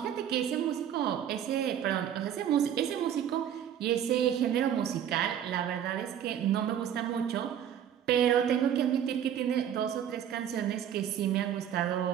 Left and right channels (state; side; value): quieter; left; 9.7 dB